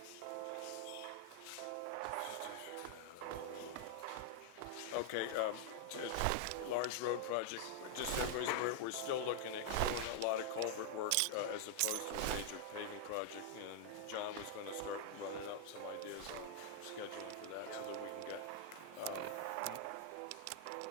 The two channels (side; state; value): both; different; correlation 0.00